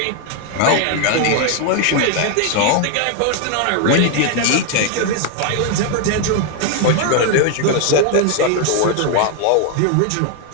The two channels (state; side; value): different; both; correlation 0.01